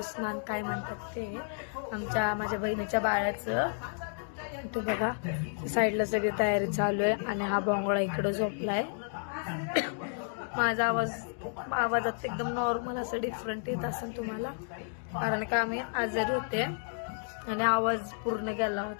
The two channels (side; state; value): right; silent; 57 dB below the other